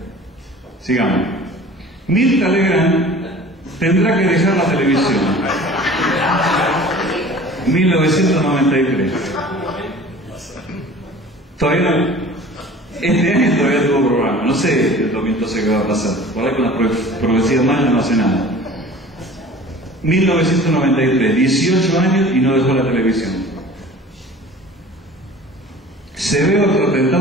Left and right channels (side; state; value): both; normal; correlation 0.44